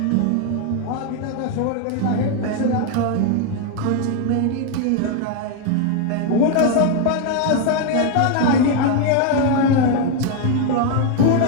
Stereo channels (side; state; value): both; different; correlation 0.01